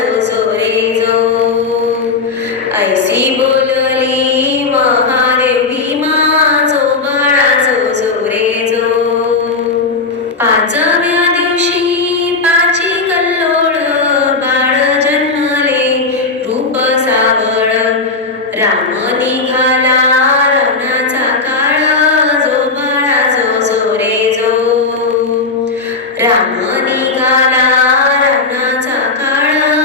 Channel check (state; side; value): quieter; right; 4.0 dB